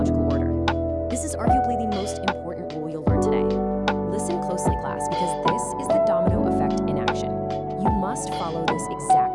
order. This is arguably the most important rule you'll learn today. Listen closely, class, because this is the domino effect in action. You must follow this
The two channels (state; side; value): identical; both; correlation 1.00